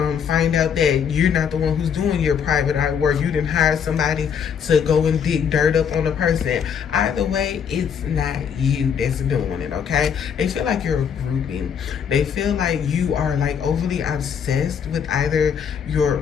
find out that you're not the one who's doing your private eye work. You didn't hire somebody to go and dig dirt up on the person. Either way, it's not you that's doing it, okay? They feel like you're a groupie. They feel like you are like overly obsessed with either your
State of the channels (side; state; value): right; quieter; 7.5 dB